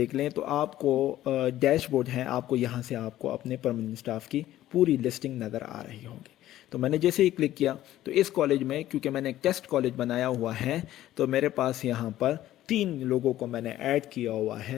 लें तो आपको डैशबोर्ड है, आपको यहाँ से आपको अपने परमानेंट स्टाफ की पूरी लिस्टिंग नज़र आ रही होगी। तो मैंने जैसे ही क्लिक किया तो इस कॉलेज में, क्योंकि मैंने एक टेस्ट कॉलेज बनाया हुआ है, तो मेरे पास यहाँ पर 3 लोगों को मैंने ऐड किया हुआ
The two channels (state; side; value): quieter; right; 13.8 dB